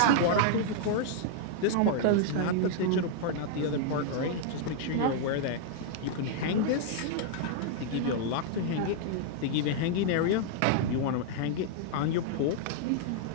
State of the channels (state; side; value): different; both; correlation -0.01